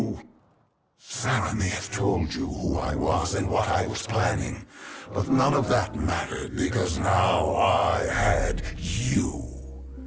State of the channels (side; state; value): both; identical; correlation 1.00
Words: Sarah may have told you who I was and what I was planning, but none of that mattered because now I had you.